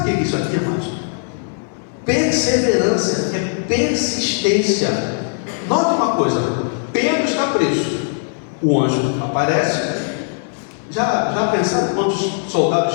o que é isso aqui, amados? Perseverança, é persistência. Note uma coisa: Pedro está preso, o anjo aparece. Já pensaram quantos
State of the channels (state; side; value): silent; right; 67 dB below the other